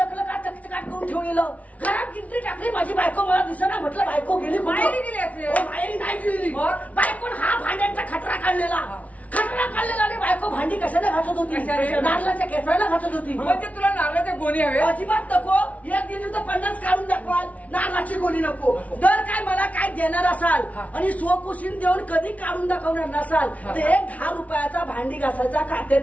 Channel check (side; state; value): right; late; 0.068 ms